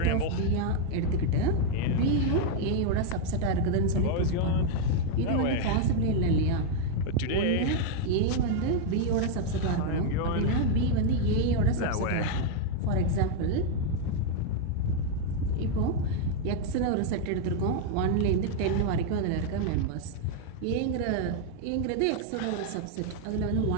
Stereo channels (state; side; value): different; both; correlation 0.00